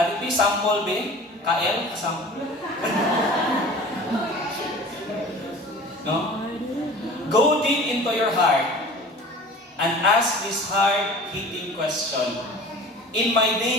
dito. Sample, be? KL? Sample? No? Go deep into your heart and ask this hard-hitting question. In my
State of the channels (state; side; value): normal; both; correlation 0.42